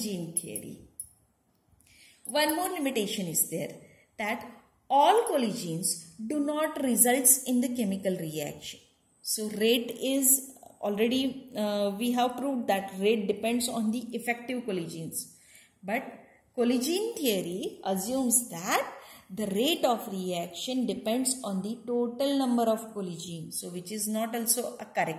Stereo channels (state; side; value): identical; both; correlation 1.00